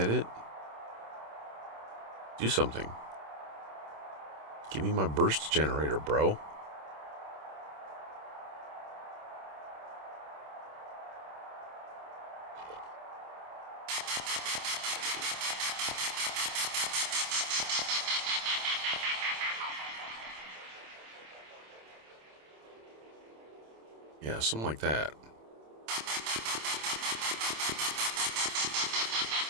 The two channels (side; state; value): left; late; 27 ms